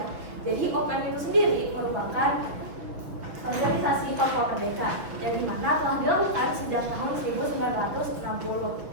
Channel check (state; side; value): late; left; 6.1 ms